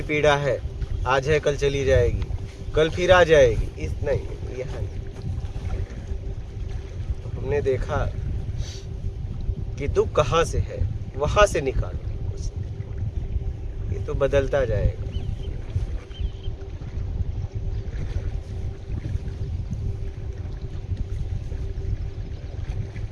पीड़ा है, आज है कल चली जाएगी, कल फिर आ जाएगी, इस नहीं, यहाँ नहीं। हमने देखा कि दुख कहाँ से है, वहां से निकालो, ये तो बदलता जाएगा।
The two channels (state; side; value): identical; both; correlation 1.00